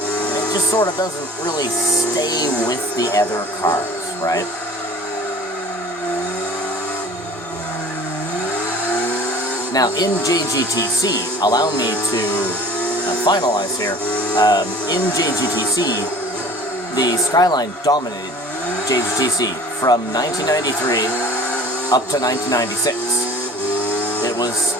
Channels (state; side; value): normal; both; correlation 0.45